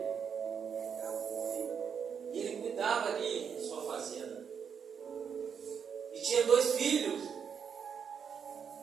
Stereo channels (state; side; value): quieter; left; 7.1 dB